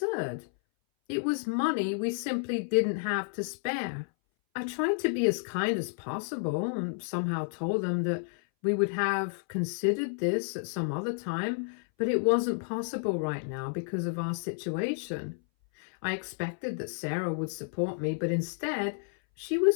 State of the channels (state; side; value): silent; right; 57 dB below the other